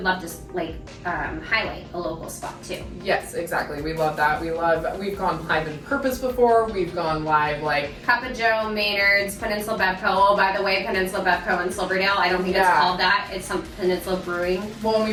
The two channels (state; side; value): identical; both; correlation 1.00